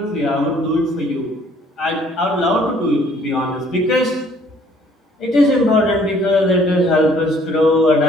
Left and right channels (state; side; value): normal; both; correlation 0.60